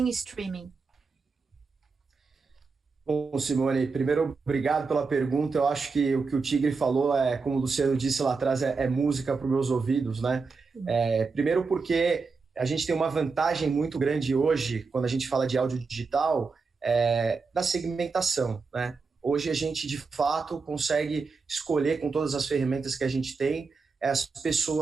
streaming? Bom, Simone, primeiro, obrigado pela pergunta. Eu acho que o que o Tigre falou, como o Luciano disse lá atrás, é música para os meus ouvidos, né? Primeiro porque a gente tem uma vantagem muito grande hoje, quando a gente fala de áudio digital, da segmentação, né? Hoje a gente, de fato, consegue escolher com todas as ferramentas que a gente tem as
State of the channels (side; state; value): left; quieter; 4.6 dB